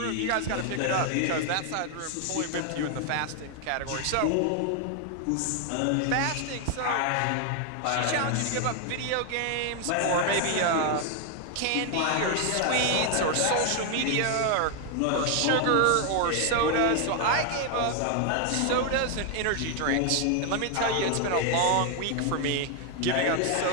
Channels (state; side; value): different; both; correlation 0.00